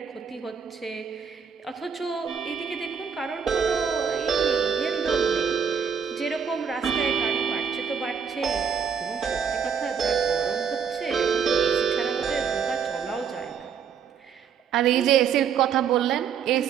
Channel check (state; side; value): quieter; left; 7.1 dB